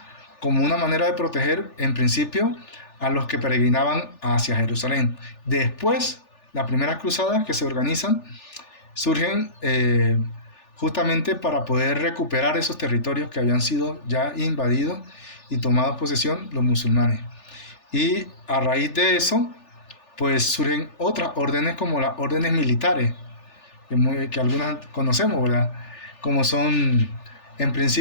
como una manera de proteger, en principio, a los que peregrinaban hacia Jerusalén. Después, las primeras cruzadas que se organizan surgen justamente para poder recuperar esos territorios que habían sido ya invadidos y tomados posesión los musulmanes. Y a raíz de eso, pues surgen otras órdenes como las órdenes militares, que algunas conocemos, ¿verdad? Como son, en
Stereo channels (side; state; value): right; late; 3.4 ms